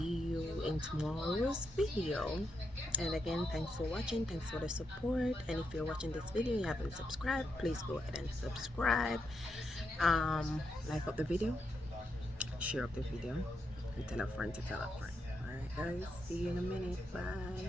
in tomorrow's video. And again, thanks for watching, thanks for the support. And if you're watching this video and you haven't subscribed, please go ahead and subscribe. Like up the video, share up the video, and tell a friend to tell a friend. All right guys, see you in a minute.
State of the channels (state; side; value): normal; both; correlation 0.82